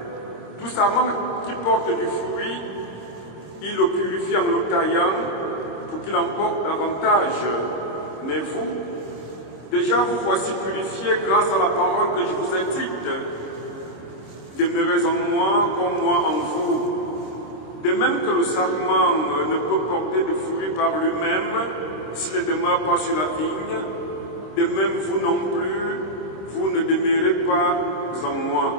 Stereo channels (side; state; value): right; late; 26 ms